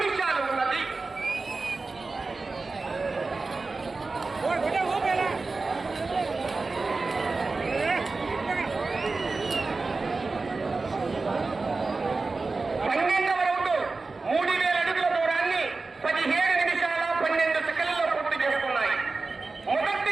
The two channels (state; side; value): quieter; left; 3.8 dB